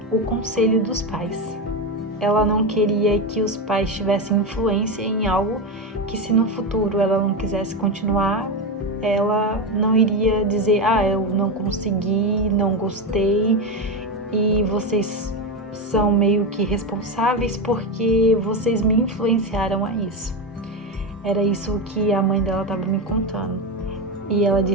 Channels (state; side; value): normal; both; correlation 0.15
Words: o conselho dos pais. Ela não queria que os pais tivessem influência em algo que, se no futuro ela não quisesse continuar, ela não iria dizer: eu não consegui, não gostei, e vocês são meio que responsáveis porque vocês me influenciaram a isso. Era isso que a mãe dela estava me contando. E ela